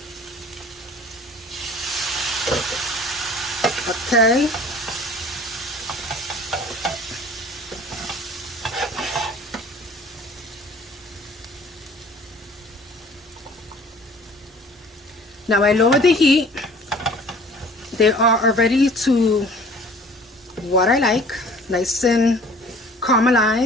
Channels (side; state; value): both; normal; correlation 0.49